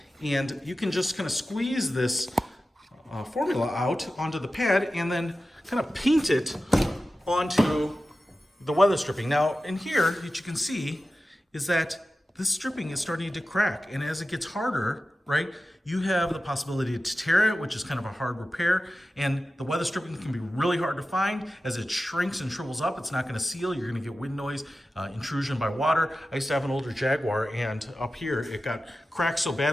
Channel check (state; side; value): normal; both; correlation 0.94